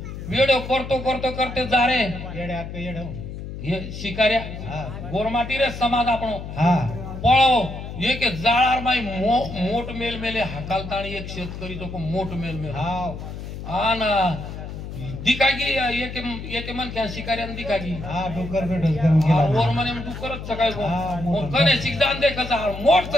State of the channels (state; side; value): noise; left; hum, 9 dB below the sound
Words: वेडो करतो करतो करते जा रे येडे अक्क येडो हे शिकाऱ्या हा गोरमाटी रे समाज आपण हा पळो एक जाळार माई मोठ मेल मेले हाकालताणी एक शेतकरी तो मोठ मेल मेल हा आन दिखागी एक मन क्या शिकाऱ्यान दिखागी हा डोकर भेटच करून गेला वर म्हणे डुकरच सकाळी हा, मोठ. कने शिकदान दे कसा मोठ